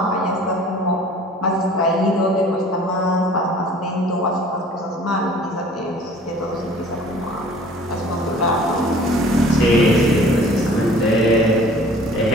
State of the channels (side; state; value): both; normal; correlation 0.49